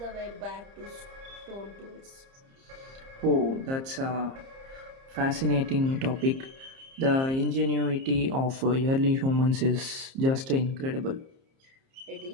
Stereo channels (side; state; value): left; late; 30 ms